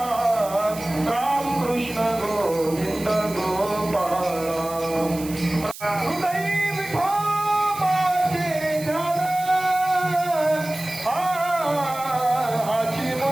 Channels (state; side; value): noise; right; hiss, 14 dB below the sound